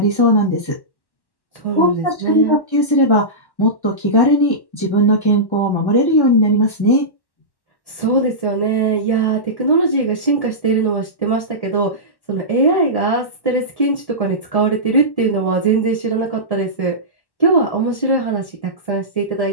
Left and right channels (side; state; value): right; late; 1.1 ms